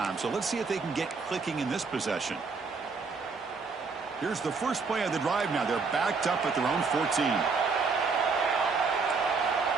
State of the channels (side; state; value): left; quieter; 4.7 dB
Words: so let's see if they can get clicking in this possession. Here's the first play of the drive now. They're backed up at their own 14.